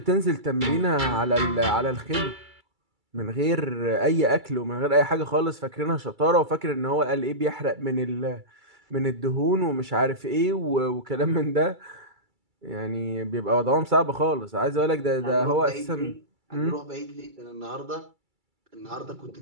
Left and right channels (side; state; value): left; late; 2.3 ms